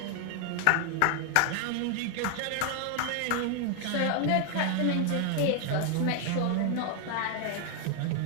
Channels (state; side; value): different; both; correlation 0.00